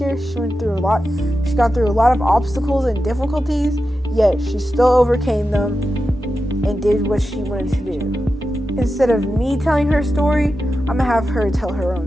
She got through a lot of obstacles and difficulties, yet she still overcame them and did what she wanted to do. Instead of me telling her story, I'm gonna have her tell her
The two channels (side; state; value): both; normal; correlation 0.91